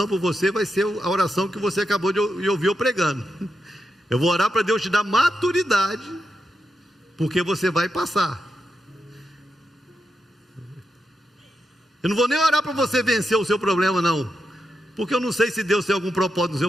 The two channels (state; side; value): normal; both; correlation 0.86